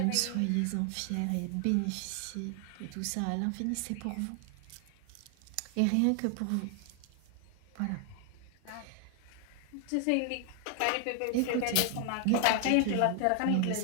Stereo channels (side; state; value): both; different; correlation 0.00